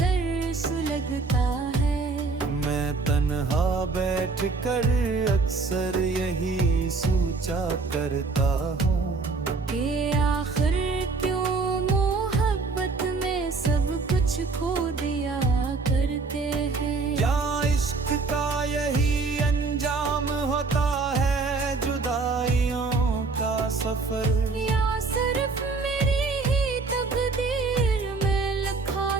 सुलगता है। मैं तन्हा बैठ कर अक्सर यही सोचा करता हूँ कि आखिर क्यों मोहब्बत में सब कुछ खो दिया करते हैं। क्या इश्क का यही अंजाम होता है जुदाइयों का सफर। या सिर्फ मेरी ही तकदीर में लिखा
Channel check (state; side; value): quieter; left; 4.1 dB